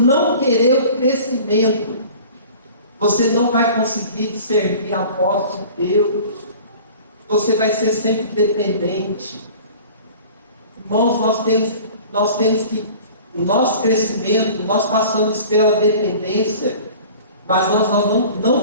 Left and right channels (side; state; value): both; inverted; correlation -0.44